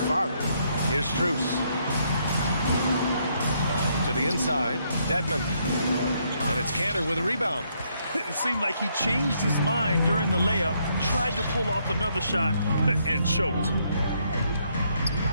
firing. Here's Strus. To the inside, Dedmon. And it's Canner with a rebound. It seemed like he changed his mind during the layup, tried to pull off another shot, and choked.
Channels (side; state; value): both; inverted; correlation -0.73